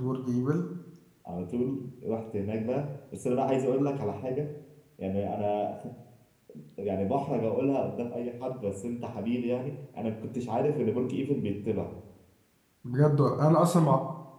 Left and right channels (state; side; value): identical; both; correlation 1.00